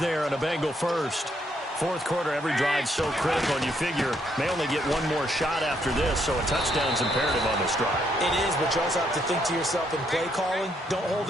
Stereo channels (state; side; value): normal; both; correlation 0.74